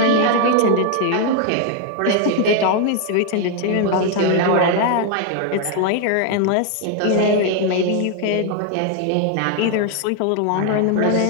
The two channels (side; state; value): both; different; correlation 0.00